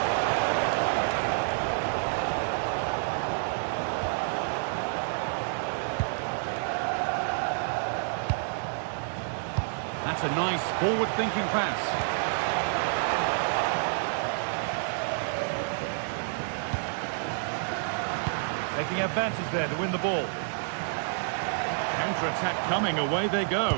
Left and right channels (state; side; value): silent; left; digital silence